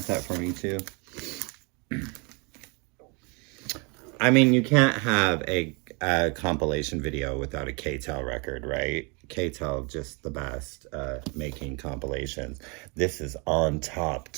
that for me too. I mean, you can't have a compilation video without a KTEL record, right? KTEL, just the best making compilations. This is on top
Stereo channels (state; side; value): quieter; left; 32.1 dB